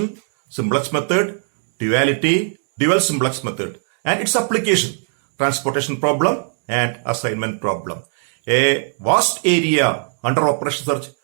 simplex method, duality, dual simplex method, and its application, transportation problem and assignment problem. A vast area under operation research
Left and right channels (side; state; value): left; silent; digital silence